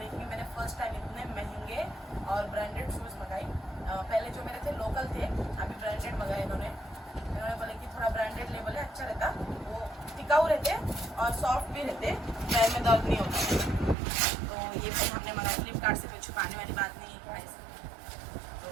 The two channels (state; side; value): drops out; left; at 14.0 s